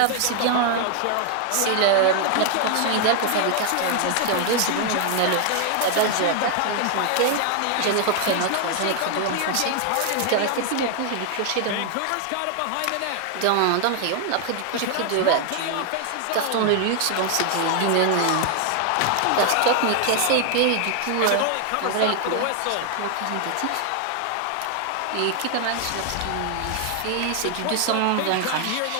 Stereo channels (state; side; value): different; both; correlation 0.00